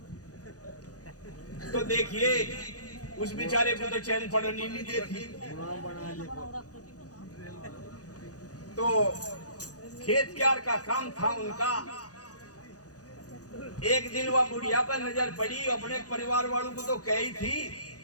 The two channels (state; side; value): late; right; 0.67 ms